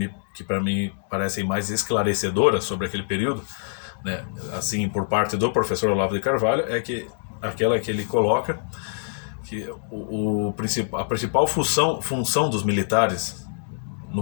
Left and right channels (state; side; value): silent; right; digital silence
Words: que para mim parecem mais esclarecedoras sobre aquele período, né? Assim, por parte do professor Olavo de Carvalho, é que aquela que ele coloca que a principal função dos militares